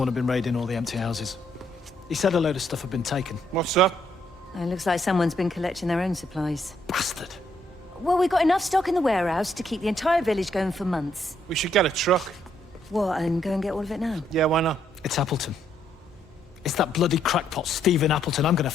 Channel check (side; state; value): both; normal; correlation 0.73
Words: had been raiding all the empty houses. He said a load of stuff had been taken. What's up? It looks like someone's been collecting their own supplies. Bastard. Well, we've got enough stock in the warehouse to keep the entire village going for months. We should get a truck. What, and go and get all of it now? Yeah, why not? It's Appleton. It's that bloody crackpot Stephen Appleton. I'm gonna